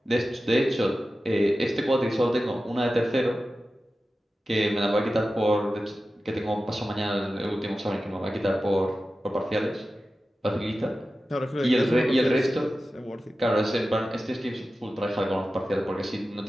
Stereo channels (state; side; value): normal; both; correlation 0.94